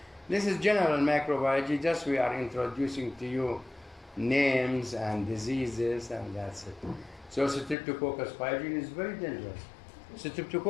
This is general microbiology, just we are introducing to you names and diseases, and that's it. So Streptococcus pyogen is very dangerous.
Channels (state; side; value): drops out; right; at 7.8 s